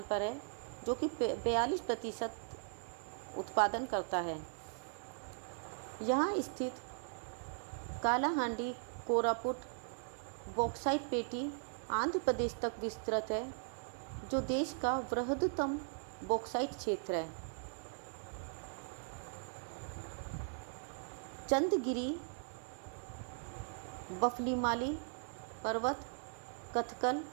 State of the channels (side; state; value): left; silent; digital silence